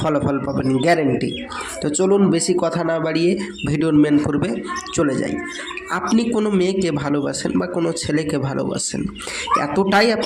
পাবেন গ্যারেন্টি। তো চলুন বেশি কথা না বাড়িয়ে ভিডিওর মেন পর্বে চলে যাই। আপনি কোনো মেয়েকে ভালোবাসেন বা কোনো ছেলেকে ভালোবাসেন, এতটাই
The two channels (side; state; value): both; identical; correlation 1.00